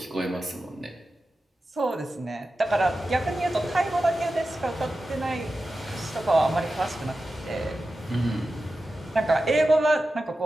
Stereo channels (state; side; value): normal; both; correlation 0.93